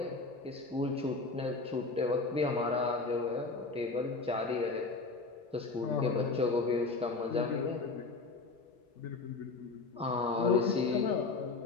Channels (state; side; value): quieter; right; 3.8 dB